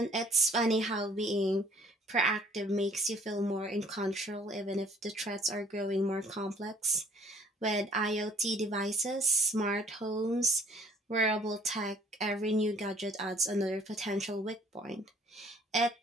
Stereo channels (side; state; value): both; normal; correlation 0.57